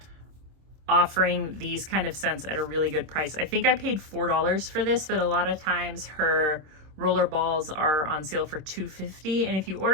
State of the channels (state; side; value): late; left; 26 ms